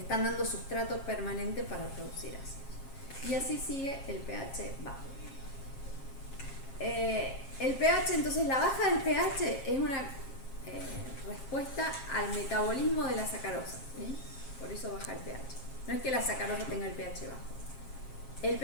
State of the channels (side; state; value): right; late; 7.4 ms